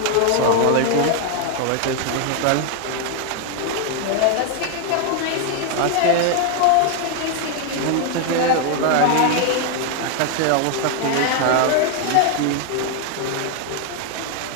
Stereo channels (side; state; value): both; different; correlation 0.00